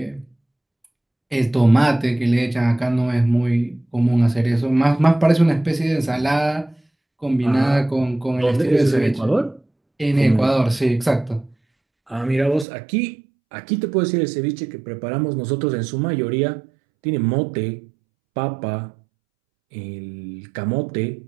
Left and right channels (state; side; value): drops out; left; at 12.7 s